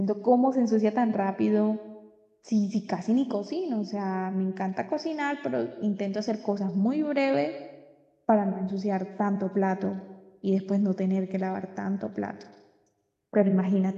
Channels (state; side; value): identical; both; correlation 1.00